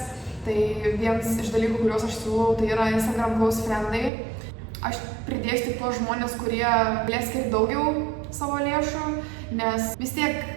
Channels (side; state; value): left; drops out; at 4.1 s